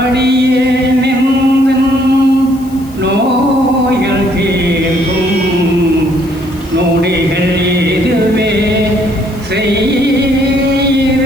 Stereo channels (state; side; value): noise; left; hiss, 24 dB below the sound